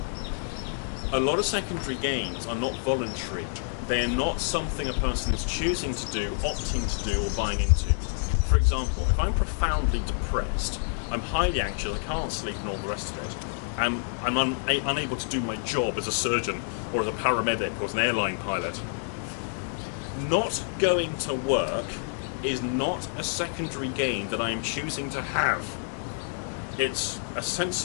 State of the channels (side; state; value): right; silent; digital silence